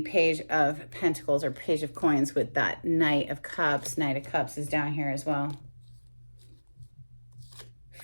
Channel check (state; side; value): inverted; both; correlation -1.00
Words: Page of Pentacles or Page of Coins with that Knight of Cups. Knight of Cups is down here as well.